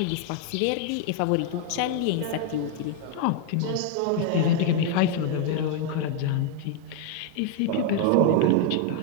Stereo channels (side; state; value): both; different; correlation 0.01